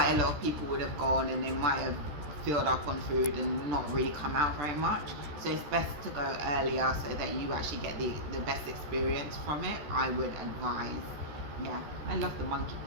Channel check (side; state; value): left; late; 14 ms